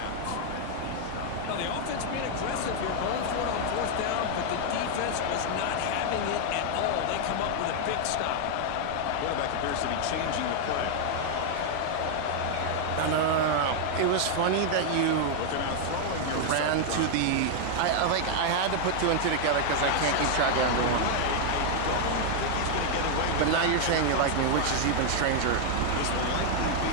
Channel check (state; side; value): different; both; correlation 0.00